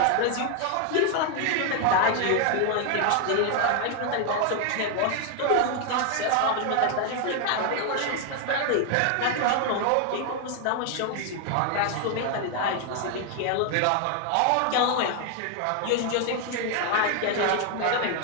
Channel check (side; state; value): both; different; correlation 0.00